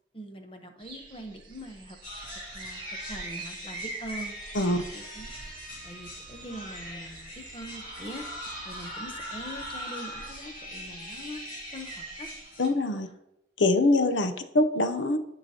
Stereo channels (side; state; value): both; normal; correlation 0.35